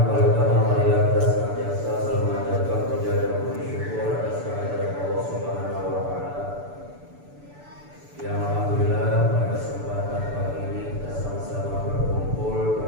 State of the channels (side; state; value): left; late; 6.9 ms